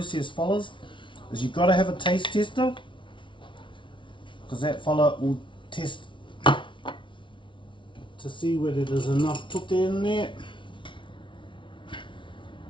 fellas, is you've got to have a taste tester, because that fella will test to see whether there's enough tutte in there.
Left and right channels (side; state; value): right; late; 0.24 ms